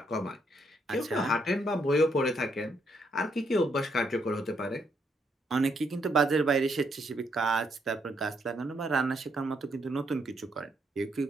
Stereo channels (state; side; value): normal; both; correlation 0.74